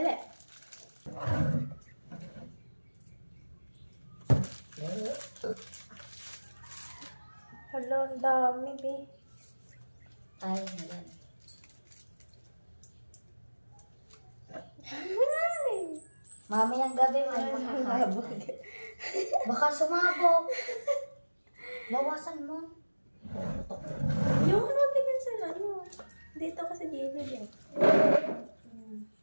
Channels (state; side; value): inverted; both; correlation -1.00